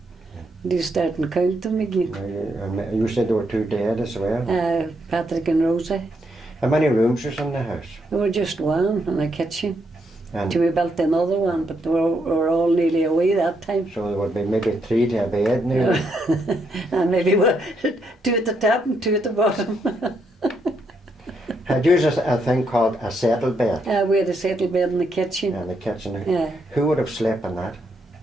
They starting counting again. You said there were 2 dead as well? Patrick and Rosie. How many rooms was in the house? There were just one in the kitchen. And Till we built another one, but we were all nearly away that time. so there would be maybe 3 to a bed now. And maybe 2 at the top and 2 at the bottom. Had you a thing called a settle bed We had a settle bed in the kitchen. in the kitchen? Yeah. Who would have slept in that?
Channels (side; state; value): both; normal; correlation 0.77